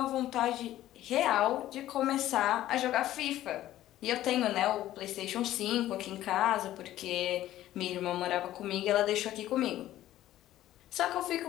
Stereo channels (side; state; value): right; quieter; 13.8 dB